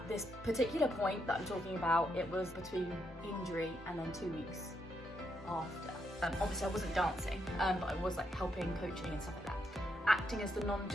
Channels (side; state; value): both; normal; correlation 0.79